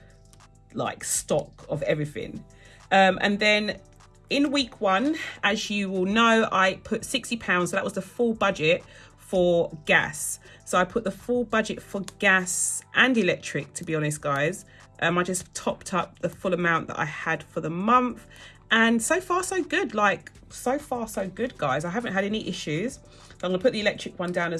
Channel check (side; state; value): both; identical; correlation 1.00